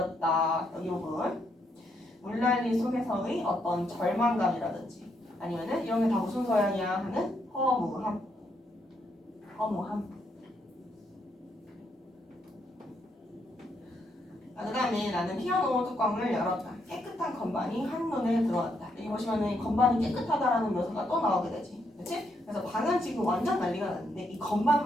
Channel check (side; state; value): both; normal; correlation 0.76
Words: 여기 부분. 물난리 속에서의 어떤 절망감이라든지 아니면은 이런 게 다 무슨 소양이야 하는 허무함. 허무함. 그 다음에 나는 피아노 뚜껑을 열었다. 깨끗한 건반이 한눈에 들어왔다. 여기 보시면은 건반이 깨끗하다라는 묘사가 또 나오게 되지. 그치? 그래서 방은 지금 완전 난리가 났는데 이